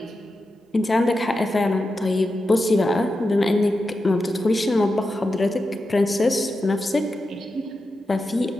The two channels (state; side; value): normal; both; correlation 0.90